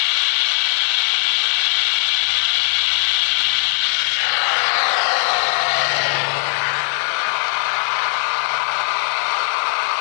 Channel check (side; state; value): right; silent; digital silence